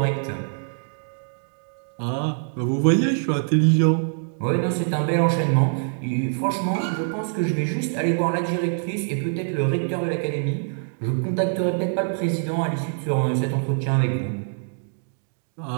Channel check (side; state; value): left; silent; digital silence